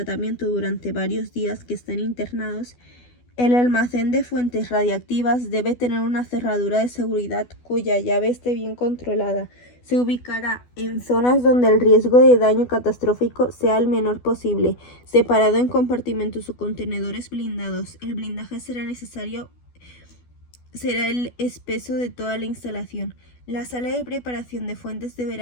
durante varios días que estén internados, el almacén de fuentes radiactivas debe tener una cerradura de seguridad cuya llave esté bien controlada. Se ubicará en zonas donde el riesgo de daño catastrófico sea el menor posible, separado en compartimentos o contenedores blindados. El blindaje será el espeso de toda la instalación. La sala de preparación de fuentes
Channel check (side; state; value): right; late; 12 ms